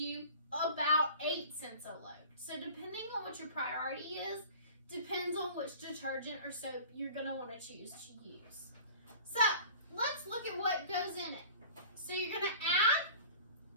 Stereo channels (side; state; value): both; inverted; correlation -0.43